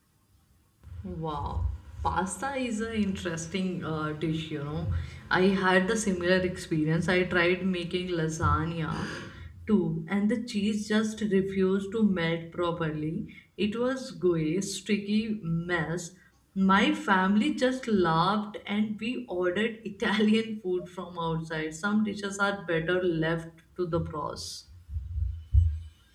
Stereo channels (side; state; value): both; identical; correlation 1.00